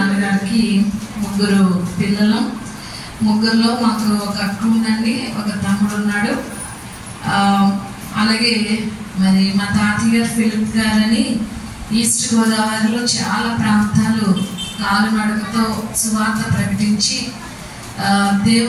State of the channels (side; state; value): both; identical; correlation 1.00